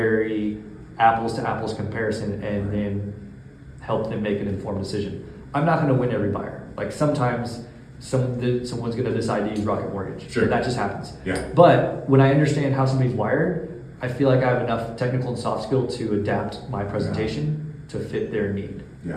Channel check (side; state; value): both; identical; correlation 1.00